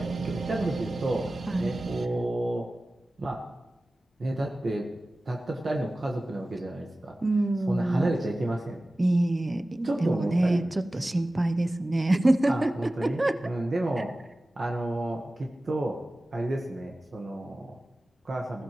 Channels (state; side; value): normal; both; correlation 0.96